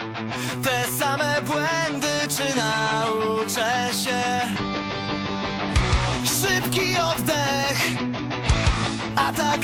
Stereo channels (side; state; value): both; identical; correlation 1.00